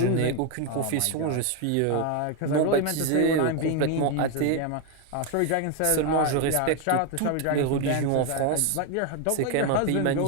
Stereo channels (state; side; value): different; both; correlation 0.01